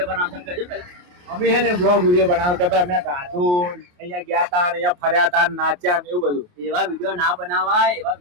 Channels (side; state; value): left; late; 28 ms